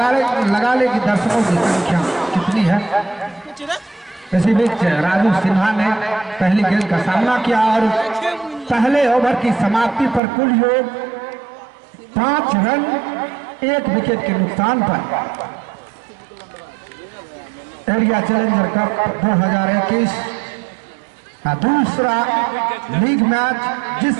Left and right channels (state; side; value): drops out; left; at 10.2 s